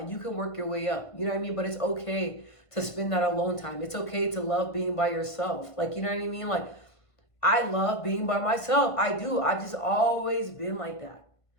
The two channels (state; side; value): late; right; 1.5 ms